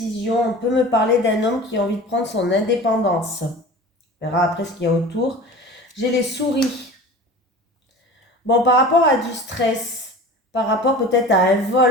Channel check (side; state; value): both; normal; correlation 0.38